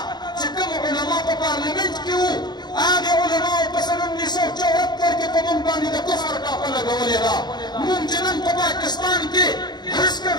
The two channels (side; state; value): right; late; 0.20 ms